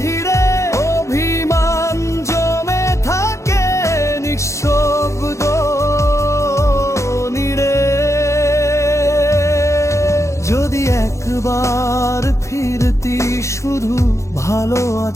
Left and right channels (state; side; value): late; right; 0.14 ms